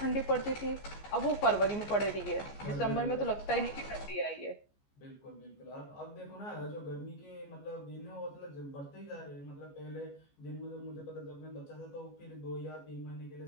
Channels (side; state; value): right; late; 14 ms